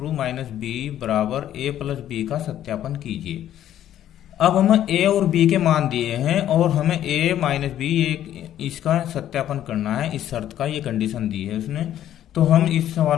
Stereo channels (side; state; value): right; quieter; 11.6 dB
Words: माइनस बी बराबर ए प्लस बी का सत्यापन कीजिए। अब हमें ए और बी के मान दिए हैं और हमें ए माइनस बी इसका सत्यापन करना है, इस शर्त का, ये कंडीशन दी है उसने। तो हम इस